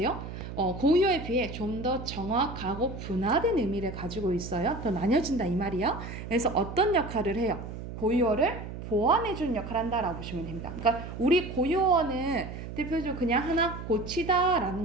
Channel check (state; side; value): noise; right; hum, 9 dB below the sound